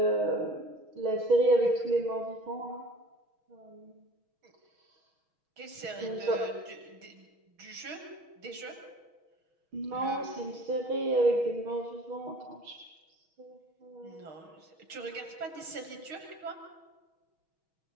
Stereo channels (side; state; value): left; late; 6.2 ms